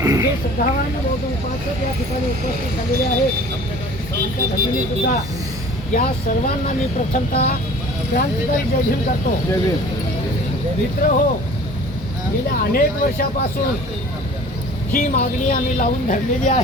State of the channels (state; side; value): normal; both; correlation 0.46